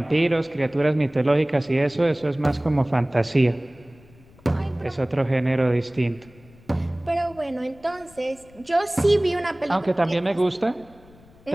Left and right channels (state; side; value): noise; left; rumble, 26 dB below the sound